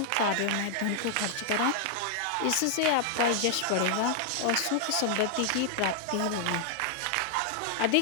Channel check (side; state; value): both; different; correlation 0.00